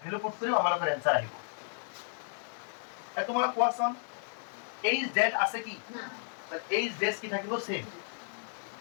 ভ্যালু পুট কৰিম আমাৰ आंसर আহিব এ তোমালোক কোৱাচোন h ড্যাশ আছে কি না h ড্যাশ কি থাকিব সেম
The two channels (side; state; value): right; silent; 55 dB below the other